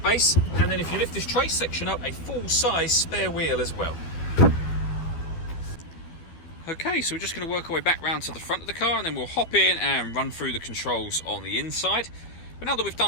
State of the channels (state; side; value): late; right; 12 ms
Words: and then if you lift this trace section up, a full-size spare wheel as well. Okay, so we're just going to work our way back round to the front of the car, and then we'll hop in and run through the controls on the inside. But now that we've